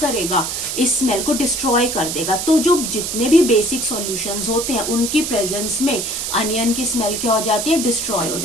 करेगा, इस स्मेल को डिस्ट्रॉय कर देगा। तो जो जितने भी बेसिक सॉल्यूशंस होते हैं उनकी प्रेजेंस में अनियन की स्मेल क्या हो जाती है, डिस्ट्रॉय हो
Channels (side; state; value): right; noise; hiss, 3 dB below the sound